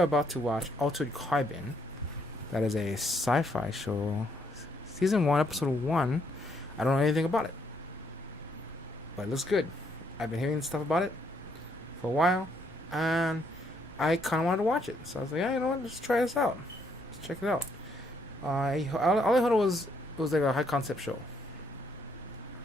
about to watch Altered Carbon. That is a sci-fi show, season one, episode one. I don't know anything about it, but it looks good. I've been hearing stuff about it for a while, and I kind of wanted to watch it. So I was like, yeah, you know what? Let's try this out. Let's check it out. All I heard was it was like a high concept show.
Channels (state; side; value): normal; both; correlation 0.72